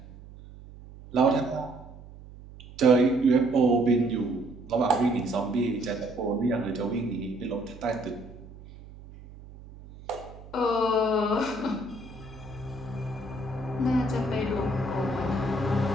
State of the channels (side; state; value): right; noise; hum, 18 dB below the sound